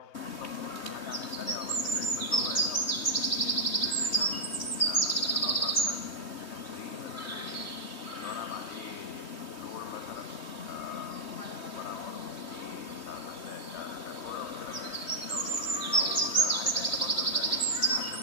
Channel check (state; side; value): late; right; 3.2 ms